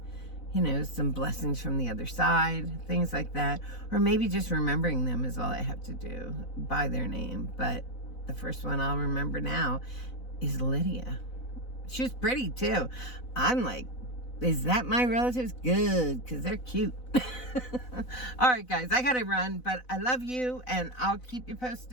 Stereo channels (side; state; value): right; late; 4.0 ms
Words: you know, some blessings from the other side, things like that. Or maybe just remembering them is all I have to do by their name. But the first one I'll remember now is Lydia. She was pretty too. I'm like, is that my relatives? Good, because they're cute. All right, guys, I gotta run, but I love you, and I'll keep you